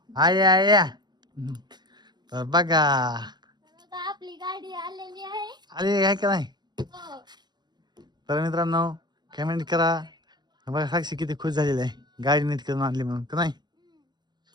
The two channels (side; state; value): left; late; 0.21 ms